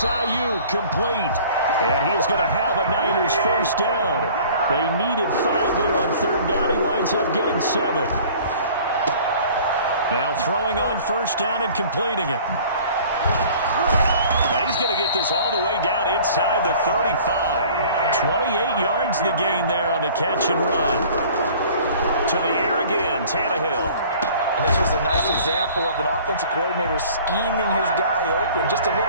complete. And he is going to have a Niners first down. They needed 5 there on 3rd down. He winds up getting 7. Now throwing on 1st down and completing it. And he's going to get this all the way down inside the 35. 28 yards the gain there on the catch and run. To the air again, Tannehill. And this was a nice example of an offensive coordinator scheming his guy open. Just a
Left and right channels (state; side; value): inverted; both; correlation -0.49